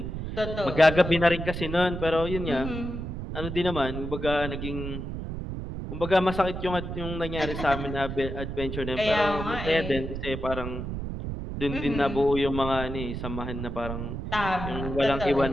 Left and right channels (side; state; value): right; noise; rumble, 6 dB below the sound